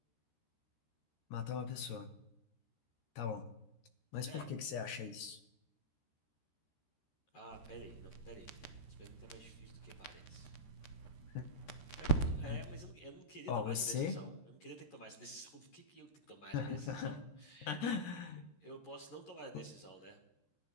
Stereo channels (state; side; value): late; right; 13 ms